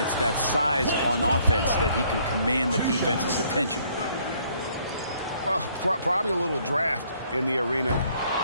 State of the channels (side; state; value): both; inverted; correlation -0.65